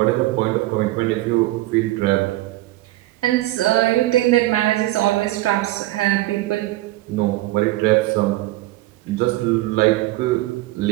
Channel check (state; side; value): quieter; left; 17.5 dB